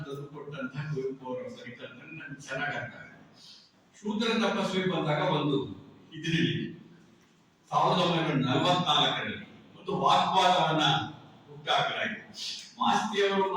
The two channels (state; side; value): identical; both; correlation 1.00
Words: ತಂದುಕೊಟ್ಟಂತಹ ಕುವೆಂಪು ಅವರ ಪರಿಕಲ್ಪನೆ ನನ್ಗೆ ಚೆನ್ನಾಗಿ ಅರ್ಥ ಆಗುತ್ತೆ. ಶೂದ್ರ ತಪಸ್ವಿ ಬಂದಾಗ ಒಂದು ಇದರಲ್ಲಿ 1944ರಲ್ಲಿ ಒಂದು ವಾಗ್ವಾದವನ್ನ ಹುಟ್ಟಾಕಲಾಗಿದೆ. ಮಾಸ್ತಿಯವರು